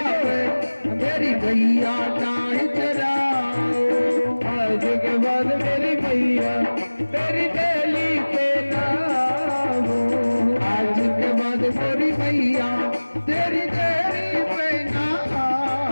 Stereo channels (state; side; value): inverted; both; correlation -1.00